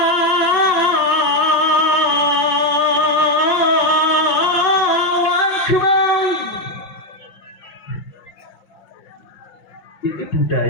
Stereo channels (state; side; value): late; right; 5.7 ms